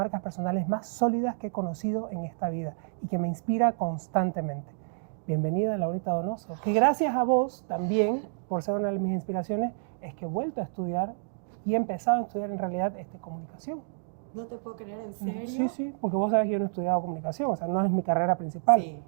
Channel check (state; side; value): silent; left; digital silence